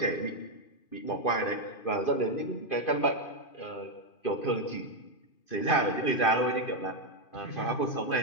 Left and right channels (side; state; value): right; late; 2.5 ms